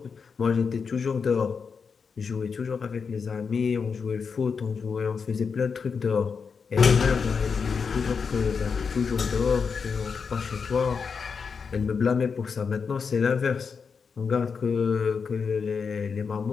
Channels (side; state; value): right; quieter; 5.7 dB